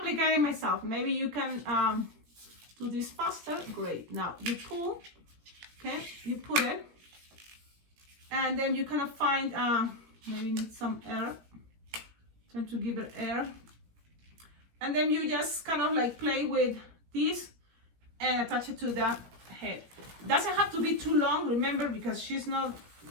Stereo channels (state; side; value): late; left; 17 ms